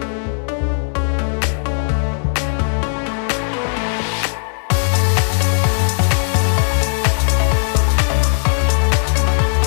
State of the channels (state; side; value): silent; right; 68 dB below the other